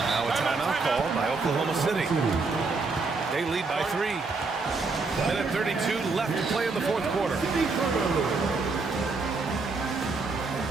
Now a timeout called by Oklahoma City. They lead by 3. Minute 32 left to play in the fourth quarter.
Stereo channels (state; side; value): quieter; left; 4.1 dB